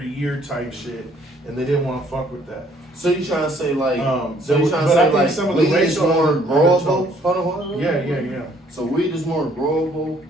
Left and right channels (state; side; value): normal; both; correlation 0.63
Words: year type shit, and they didn't want to fuck with that. So you trying to say like, but I think some of the weed is racial more growable? undertones. Hold on. Yeah. So weed is more growable